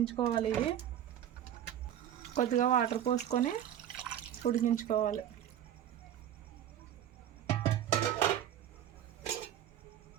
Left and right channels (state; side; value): quieter; left; 10.8 dB